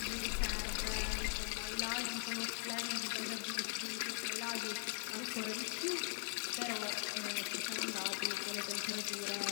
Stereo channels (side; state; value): right; silent; digital silence